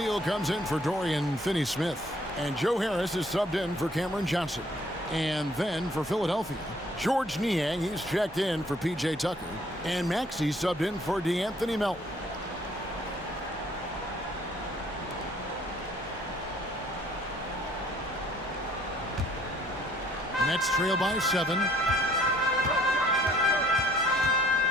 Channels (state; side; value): normal; both; correlation 0.61